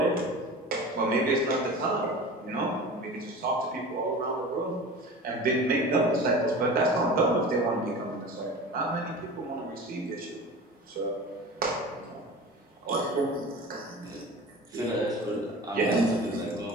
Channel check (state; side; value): normal; both; correlation 0.35